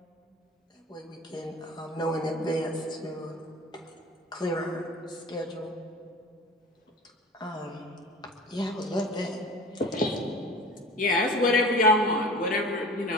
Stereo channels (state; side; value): normal; both; correlation 0.38